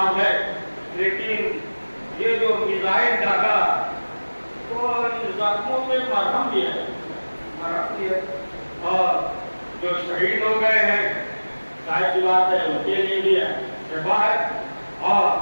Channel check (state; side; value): inverted; both; correlation -1.00